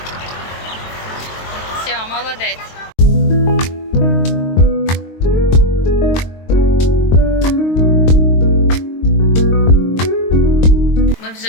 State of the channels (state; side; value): late; right; 22 ms